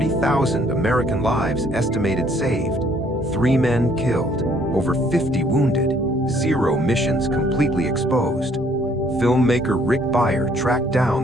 American lives estimated saved, 3 men killed, over 50 wounded, 0 missions completely exposed. Filmmaker Rick Beyer tracked down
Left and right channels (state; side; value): normal; both; correlation 0.63